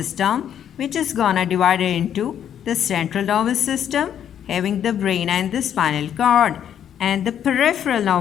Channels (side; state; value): right; quieter; 9.5 dB